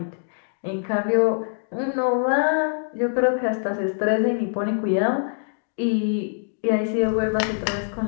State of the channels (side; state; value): right; silent; digital silence